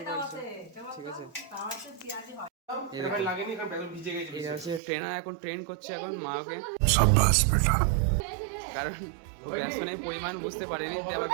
পারছো, ঠিক আছে। এটা হচ্ছে ট্রেনার এখন ট্রেন করছে এখন মাকে, কারণ বেসনের পরিমাণ বুঝতে পারেনি, আবার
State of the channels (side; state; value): left; drops out; at 4.8 s